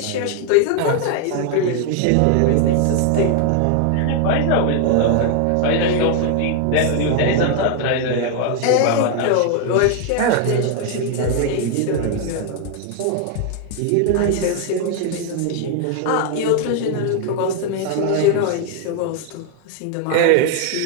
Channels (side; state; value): both; different; correlation 0.00